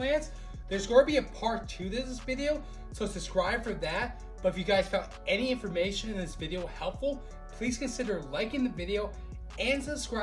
There's going to be a part 2 to this video, so subscribe for that. But if you guys found any information in this video helpful, please consider liking the video and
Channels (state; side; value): identical; both; correlation 1.00